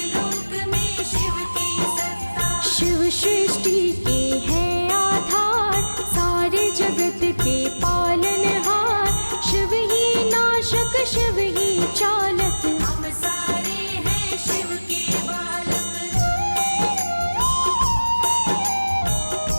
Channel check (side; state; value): both; inverted; correlation -1.00